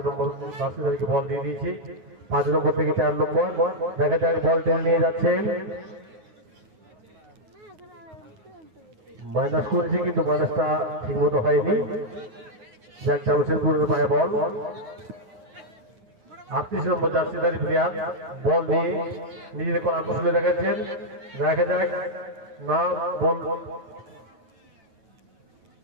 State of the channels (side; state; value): left; late; 9.5 ms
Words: নম্বর জার্সিধারীকে বল দিয়ে দিয়েছে। 5 নম্বর থেকে 4 নম্বর, দেখা যাক বল টেনে নিয়ে যাচ্ছেন, মাইনাস করেছে কিন্তু মাইনাসটা ঠিক মতো হয়নি। যাক, জামশেদপুরের পায়ে বল। 38 নম্বর জার্সিধারী প্লেয়ার বল নিয়ে নিজেদের করা কৌশলে দেখাচ্ছেন, দেখা যাক না বল।